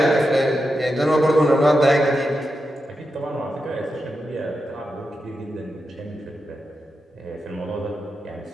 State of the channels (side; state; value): both; normal; correlation 0.88